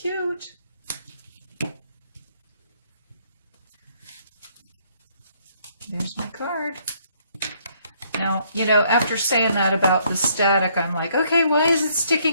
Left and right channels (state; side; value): inverted; both; correlation -0.67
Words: There's my card. Now, you know, after saying that about the static, I'm like, okay, why is it